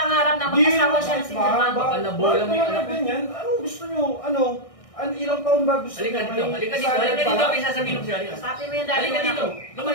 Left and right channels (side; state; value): right; late; 1.6 ms